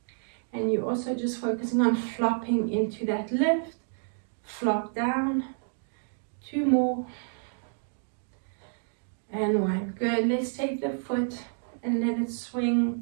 And you're also just focusing on flopping into that lift. Flop down. 2 more. And 1. Good. Let's take the foot and let it swing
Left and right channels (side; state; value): left; silent; digital silence